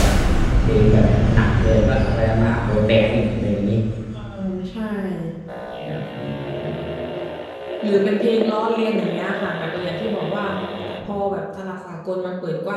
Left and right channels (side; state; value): both; identical; correlation 1.00